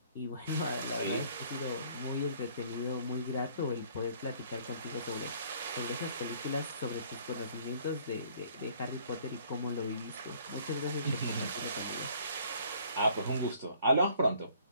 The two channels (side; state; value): both; inverted; correlation -0.59